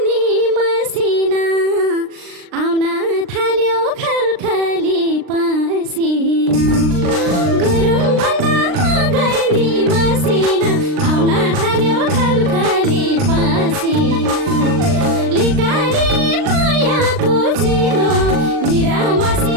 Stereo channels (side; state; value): left; late; 39 ms